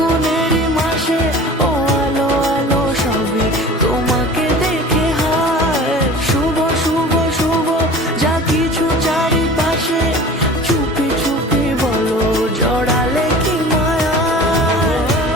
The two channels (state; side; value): normal; both; correlation 0.40